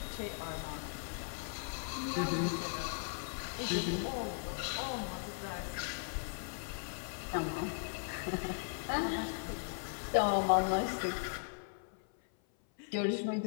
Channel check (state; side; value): silent; right; 52 dB below the other